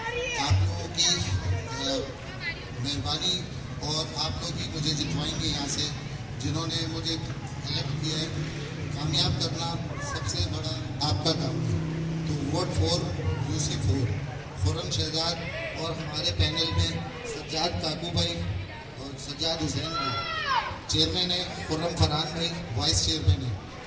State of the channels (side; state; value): both; identical; correlation 1.00